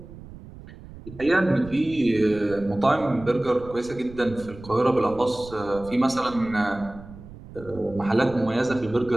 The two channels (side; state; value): right; noise; rumble, 17 dB below the sound